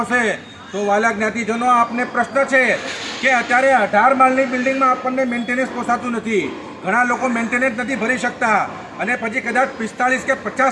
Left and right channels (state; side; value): identical; both; correlation 1.00